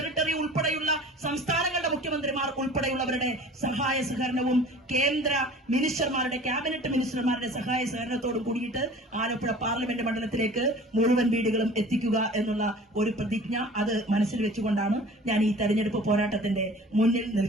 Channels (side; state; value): both; normal; correlation 0.44